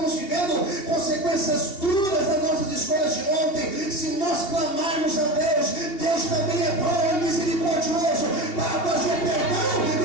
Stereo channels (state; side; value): late; right; 2.8 ms